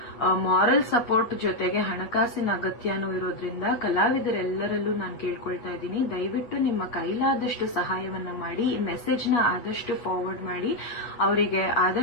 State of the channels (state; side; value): late; right; 8.3 ms